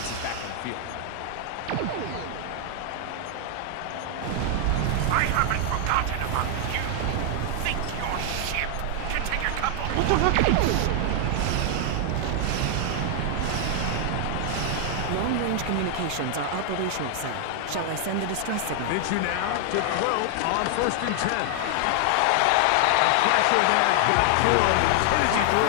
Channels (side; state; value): both; different; correlation 0.00